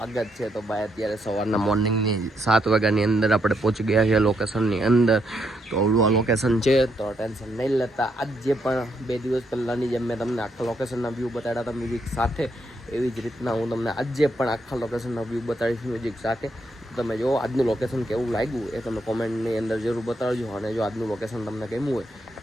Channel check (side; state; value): both; normal; correlation 0.77